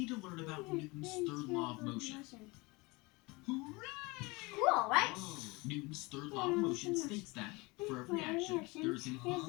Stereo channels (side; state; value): right; quieter; 24.8 dB